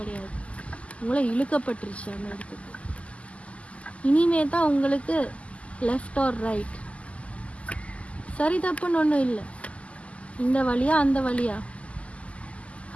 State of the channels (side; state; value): right; late; 0.063 ms